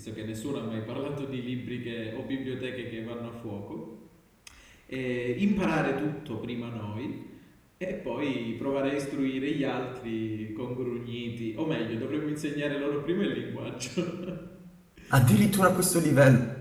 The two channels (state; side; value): identical; both; correlation 1.00